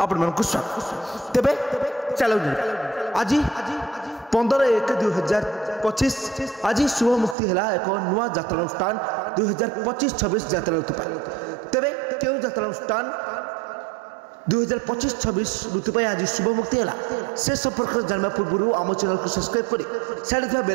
आपण स्वागत। तेबे चलो आज 15/1/2025 आज शुभ मुक्ति है एक नुआ यात्रा अनुष्ठान 2025-26 यात्रा ऋतु। तेबे क्यों यात्रा अनुष्ठान 2025-26 ऋतु आज शुभ मुक्ति है से संपर्क जानवा पूर्व आम चैनल को सब्सक्राइब कर साइड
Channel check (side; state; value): left; drops out; at 7.4 s